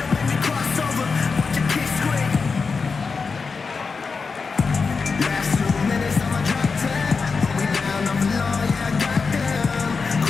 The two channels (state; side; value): quieter; right; 4.8 dB